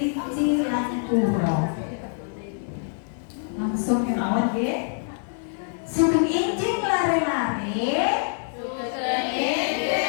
lan kura. Langsung kemawon nggih. Sugeng injing lare-lare. Sugeng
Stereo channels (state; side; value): silent; right; 62 dB below the other